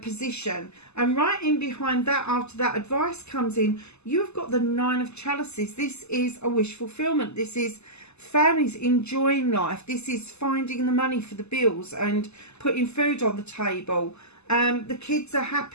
position. And right in behind that, after that advice comes in, you've got the 9 of chalices. This is a wish fulfillment. This is families enjoying life. This is finding the money for the bills and putting food on the table. The kids are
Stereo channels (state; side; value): late; right; 0.80 ms